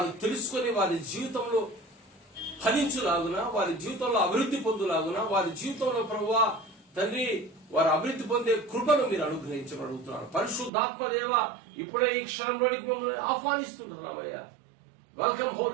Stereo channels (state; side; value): drops out; left; at 10.7 s